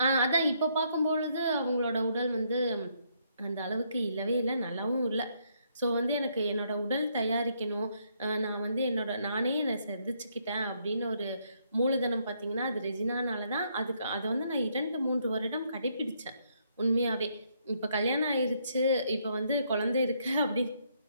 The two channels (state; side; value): inverted; both; correlation -0.73